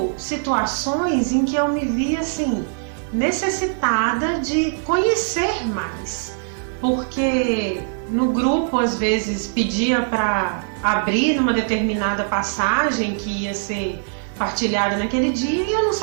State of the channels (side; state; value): left; silent; digital silence